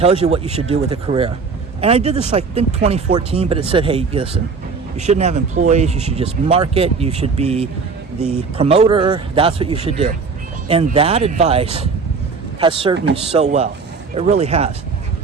you what you should do with a career. And I did this, I think, 2014, but it said, hey, listen, you shouldn't have employees, you should just market, you should be the promoter, that's what you should do. And that advice has served me so well. It really has.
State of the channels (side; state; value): left; quieter; 4.9 dB